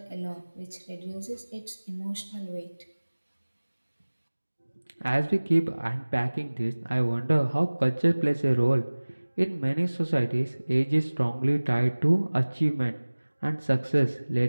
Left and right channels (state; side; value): inverted; both; correlation -1.00